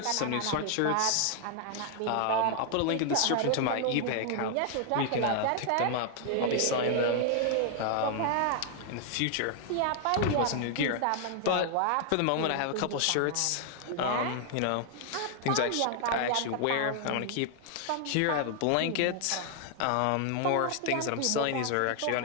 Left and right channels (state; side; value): different; both; correlation 0.00